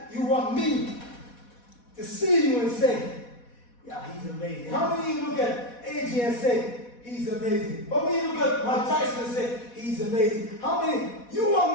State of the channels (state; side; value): late; right; 4.1 ms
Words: you want me to see you and say, yeah, he's amazing. How many of you look at AJ and say, he's amazing? How many of you look at Mike Tyson and say, he's amazing? How many you